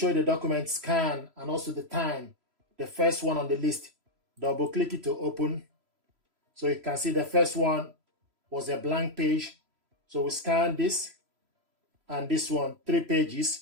you the document scan and also the time, the first one on the list. Double click it to open. So you can see the first one was a blank page. So we scan this and this one, 3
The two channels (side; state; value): left; late; 3.0 ms